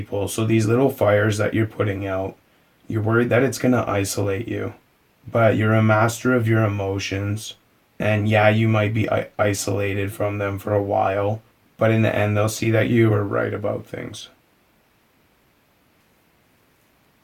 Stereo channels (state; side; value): identical; both; correlation 1.00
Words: So these little fires that you're putting out, you're worried that it's going to isolate you. But you're a master of your emotions. And yeah, you might be isolated from them for a while. But in the end, they'll see that you were right about things.